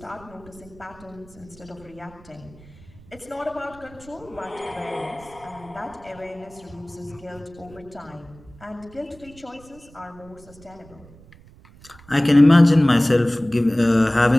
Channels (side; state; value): right; noise; rumble, 23 dB below the sound